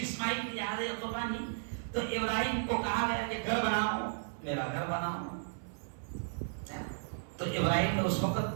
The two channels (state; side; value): silent; left; 55 dB below the other